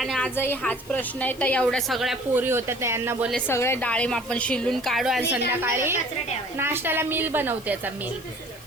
आजही हाच प्रश्न आहे. तर एवढ्या सगळ्या पोरी होत्या त्यांना बोलले सगळे डाळिंब आपण शिलून काढू आणि संध्याकाळी नाश्त्याला मिल बनवते. याचा मिल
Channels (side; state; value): left; noise; hiss, 21 dB below the sound